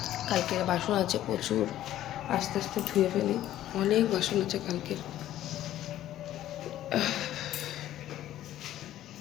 কালকের বাসন আছে প্রচুর, আস্তে আস্তে ধুয়ে ফেলি, অনেক বাসন আছে কালকের।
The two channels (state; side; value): quieter; right; 13.0 dB